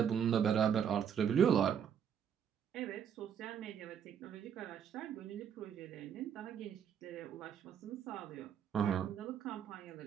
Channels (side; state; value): left; quieter; 8.3 dB